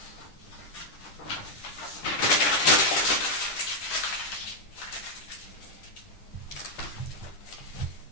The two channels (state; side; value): late; right; 10 ms